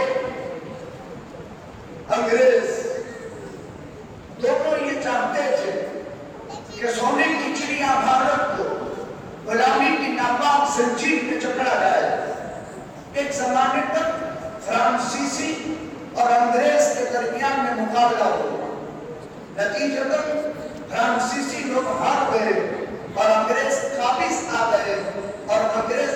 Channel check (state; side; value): identical; both; correlation 1.00